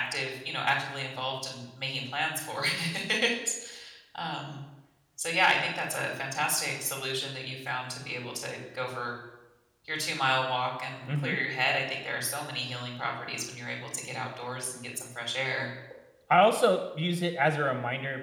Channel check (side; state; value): both; identical; correlation 1.00